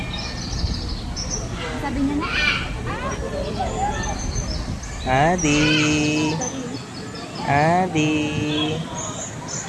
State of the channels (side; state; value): both; identical; correlation 1.00